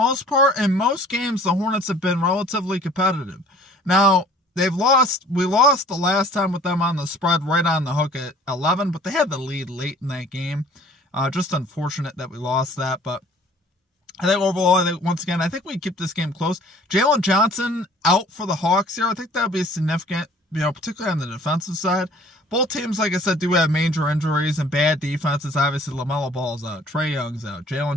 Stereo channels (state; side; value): normal; both; correlation 0.53